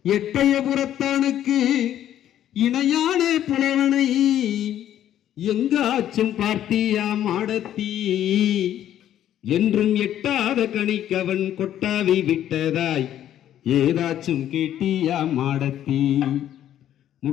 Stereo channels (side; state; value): right; quieter; 11.3 dB